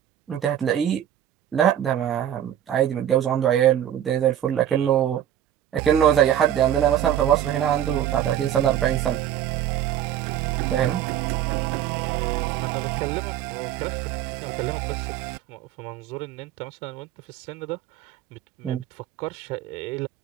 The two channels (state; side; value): quieter; left; 10.9 dB